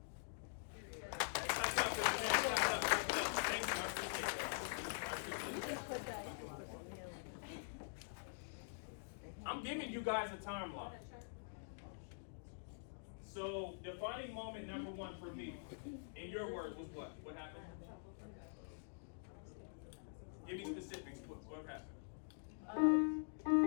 Yeah. I'm giving you guys a timeline. So, defining moment number 1 for me, in your words, was what? What happened? Give me specifics. What happened?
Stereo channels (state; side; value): silent; right; digital silence